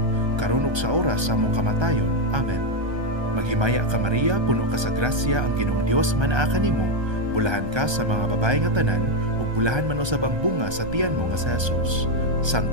karon ug sa oras sa among kamatayon. Amen. Maghimaya ka Maria, puno ka sa grasya, ang Ginoong Dios manaa kanimo. Bulahan ka sa mga babae nga tanan, ug bulahan man usab ang bunga sa tiyan mo nga sa Jesus.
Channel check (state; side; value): late; left; 1.3 ms